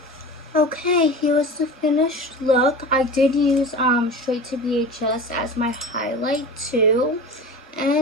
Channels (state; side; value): normal; both; correlation 0.33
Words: Okay, here's the finished look. I did use Straight to VHS as my highlight too.